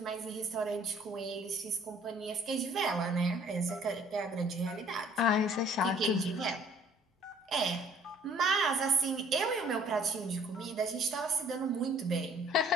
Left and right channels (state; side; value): normal; both; correlation 0.56